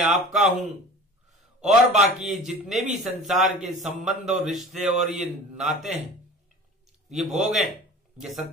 आपका हूं, और बाकी जितने भी संसार के संबंध और रिश्ते और ये नाते हैं, ये भोग हैं, ये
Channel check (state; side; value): normal; both; correlation 0.41